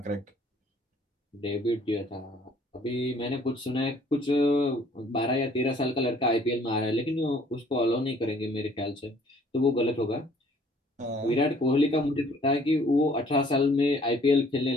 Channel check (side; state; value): both; normal; correlation 0.58